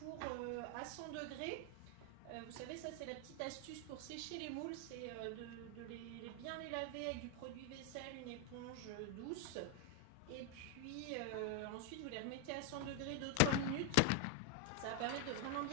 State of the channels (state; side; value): different; both; correlation 0.00